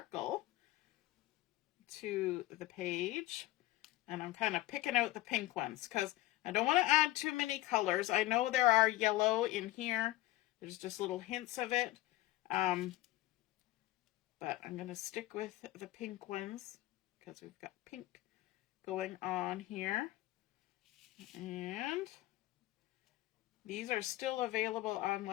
to the page. And I'm kind of picking out the pink ones because I don't want to add too many colors. I know there are yellow in here. There's just little hints of it. But I'm going to stick with the pink ones because we've got pink going on here. And these are still available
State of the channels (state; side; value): quieter; right; 16.8 dB